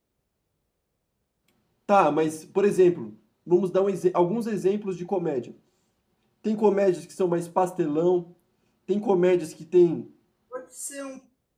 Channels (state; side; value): identical; both; correlation 1.00